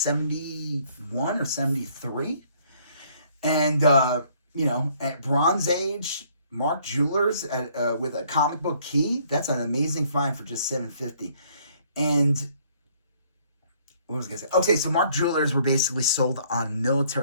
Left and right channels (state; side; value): inverted; both; correlation -0.63